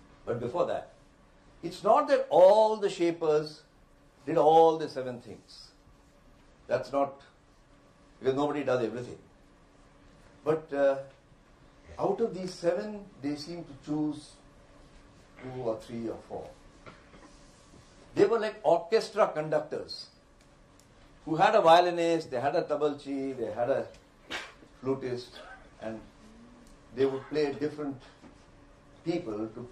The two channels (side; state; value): both; identical; correlation 1.00